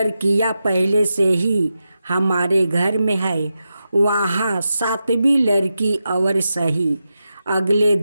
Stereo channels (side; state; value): both; inverted; correlation -0.89